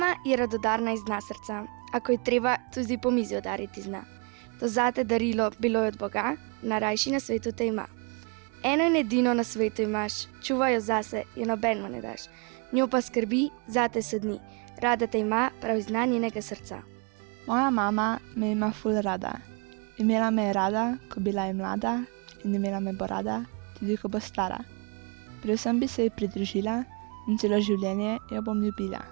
je radodarna iz dna srca, a ko je treba, tudi po mizi udariti zna. To zate darilo bilo je od Boga, najrajši na svetu te ima. Eno in edino na svetu imaš, čuvaj jo zase, jo nobenemu ne daš. Njo pa skrbi, zate se dni, rada te ima prav iz dna njenega srca. Moja mama me ima ful rada. Imela me je rada, ko bila je mlada, in imela me bo rada, tudi ko bo stara. Predvsem bi se ji pridružila in celo življenje jo bom ljubila.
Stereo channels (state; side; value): quieter; left; 34.6 dB